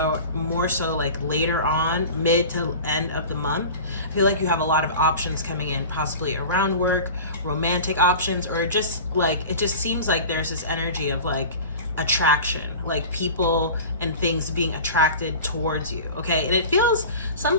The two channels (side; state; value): both; inverted; correlation -0.36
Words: like later on, mid to end of the month, I feel like you have a lot of options coming in, possibly around work, romantic options, or just like, it just seems like there's this energy of like attraction, like people and things being attracted towards you, okay? And it feels,